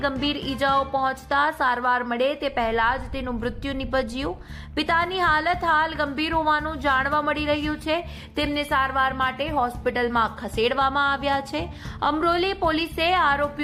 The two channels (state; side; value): identical; both; correlation 1.00